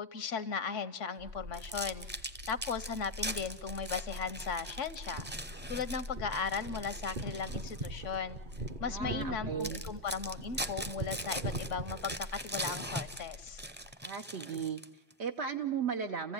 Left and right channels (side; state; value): both; normal; correlation 0.02